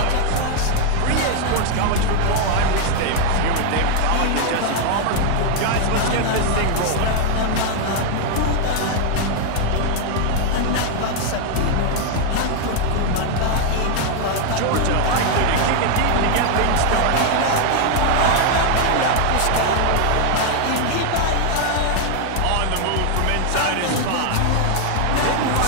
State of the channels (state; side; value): different; both; correlation 0.00